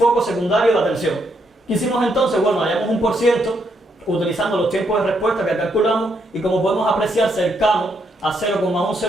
secundarios de atención. ¿Qué hicimos entonces? Bueno, hallamos un por ciento utilizando los tiempos de respuesta que calculamos y como podemos apreciar, cercano a 0,1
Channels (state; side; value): normal; both; correlation 0.76